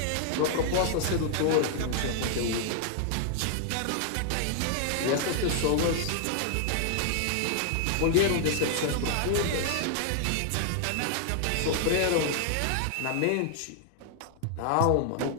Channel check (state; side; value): different; both; correlation 0.00